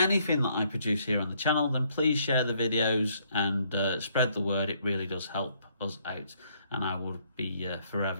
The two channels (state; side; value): inverted; both; correlation -0.69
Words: that I produce here on the channel, then please share the videos and spread the word. It really does help us out, and I will be